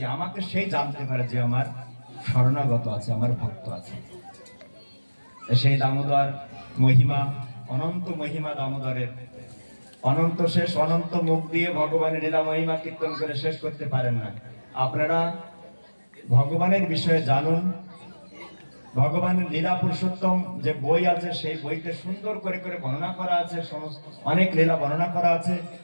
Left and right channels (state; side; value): inverted; both; correlation -1.00